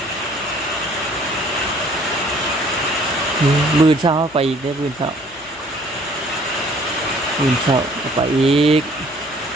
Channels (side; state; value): left; noise; hum, 26 dB below the sound